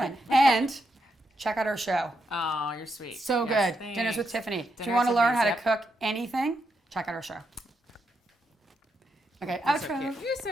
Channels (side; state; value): both; normal; correlation 0.82